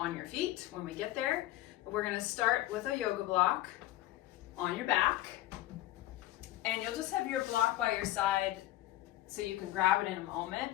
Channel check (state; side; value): quieter; right; 15.5 dB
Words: your feet when we get there. But we're going to start with a yoga block on your back, and you'll just have your block by your side so you can grab it in a moment.